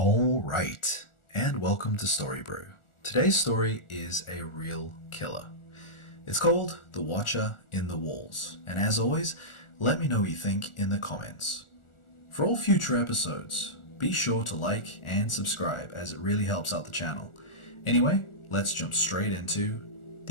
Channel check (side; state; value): right; late; 1.4 ms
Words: All right, and welcome to Story Brew. Today's story is a real killer. It's called The Watcher in the Walls, and as always, let me know what you think in the comments. For all future episodes, be sure to like and subscribe as it really helps out the channel. Anyway, let's jump straight into